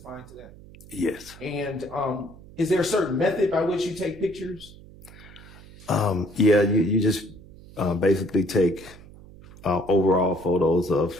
to that? Yes. And is there a certain method by which you take pictures? Yeah, you just basically take overall photos of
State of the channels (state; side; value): noise; right; hum, 20 dB below the sound